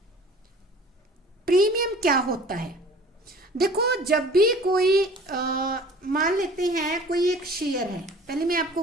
Premium क्या होता है? देखो, जब भी कोई मान लेते हैं कोई एक शेयर है, पहले मैं आपको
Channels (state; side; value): normal; both; correlation 0.46